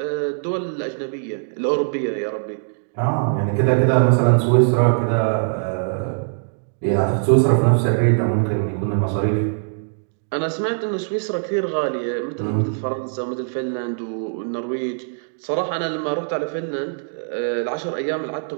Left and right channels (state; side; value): silent; left; digital silence